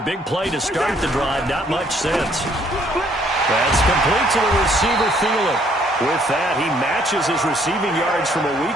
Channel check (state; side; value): normal; both; correlation 0.65